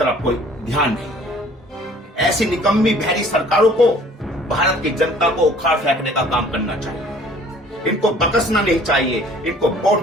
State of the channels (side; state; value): both; normal; correlation 0.53